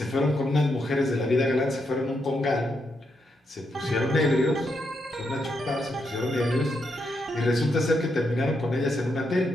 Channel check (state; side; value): normal; both; correlation 0.81